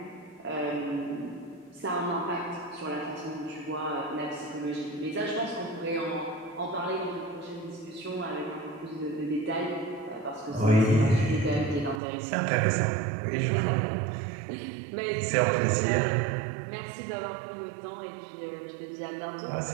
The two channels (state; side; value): drops out; left; at 12.0 s